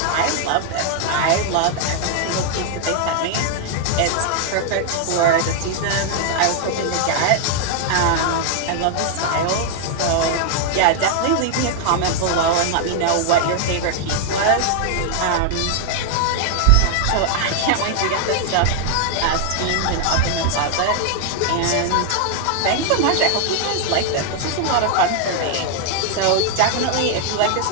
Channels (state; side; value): different; both; correlation 0.00